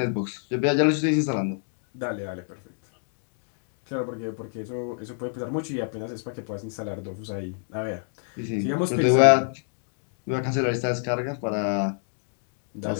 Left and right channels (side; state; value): right; silent; 60 dB below the other